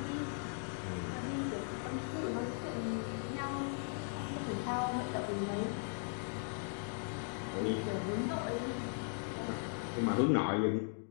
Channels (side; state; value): right; silent; 52 dB below the other